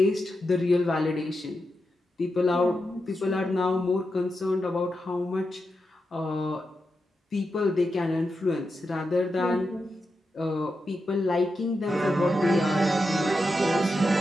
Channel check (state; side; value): normal; both; correlation 0.88